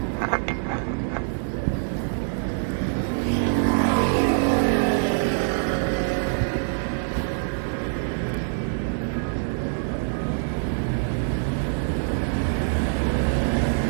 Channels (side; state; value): left; silent; 62 dB below the other